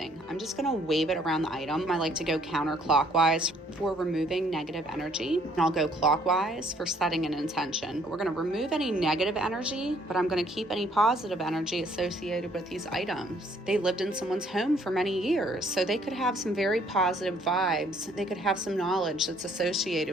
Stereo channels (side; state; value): both; normal; correlation 0.63